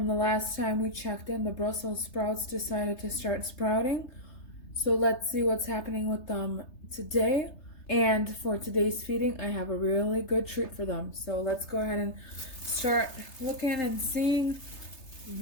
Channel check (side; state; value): right; late; 3.3 ms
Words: the last time we checked in, the Brussels sprouts decided to start sprouting. So let's see what's happening with them today. And for today's feeding, I have a really good treat for them. So let's go ahead and start looking and seeing